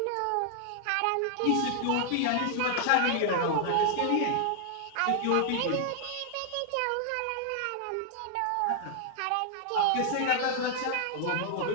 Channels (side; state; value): both; different; correlation 0.00